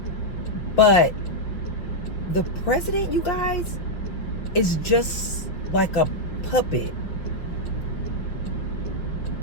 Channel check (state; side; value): late; right; 5.7 ms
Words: But the president, you guys, is just like a puppet.